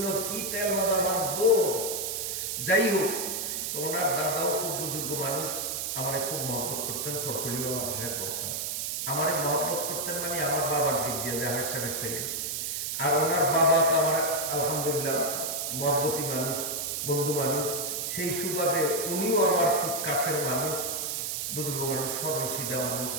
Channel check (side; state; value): right; noise; hiss, 2 dB below the sound